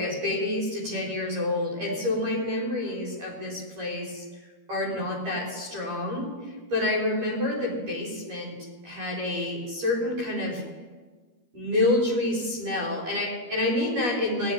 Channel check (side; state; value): left; late; 13 ms